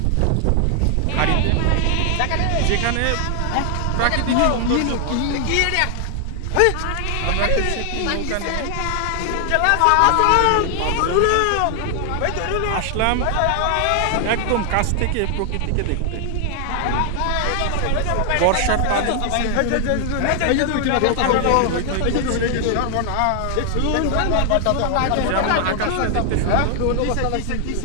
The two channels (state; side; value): different; both; correlation 0.00